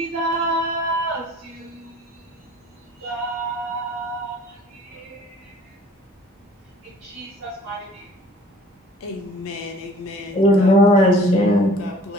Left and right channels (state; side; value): normal; both; correlation 0.51